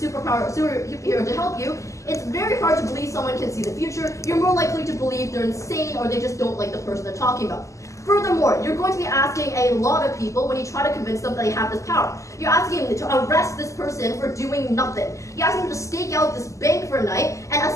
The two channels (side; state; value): right; late; 0.15 ms